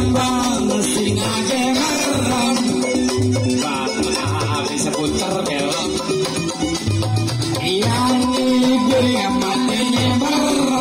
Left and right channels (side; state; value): both; identical; correlation 1.00